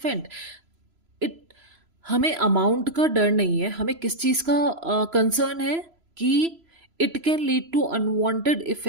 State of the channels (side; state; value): left; late; 3.0 ms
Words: It हमें अमाउंट का डर नहीं है, हमें किस चीज़ का कंसर्न है कि it can lead to unwanted